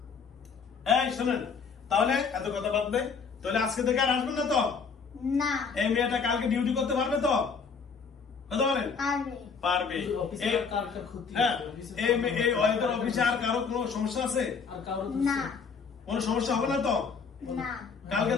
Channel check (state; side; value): quieter; right; 5.5 dB